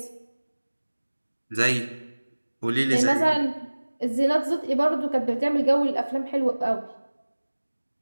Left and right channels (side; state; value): both; inverted; correlation -1.00